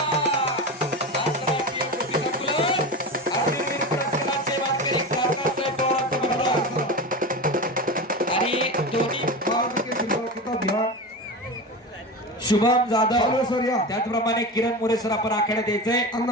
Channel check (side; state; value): both; normal; correlation 0.25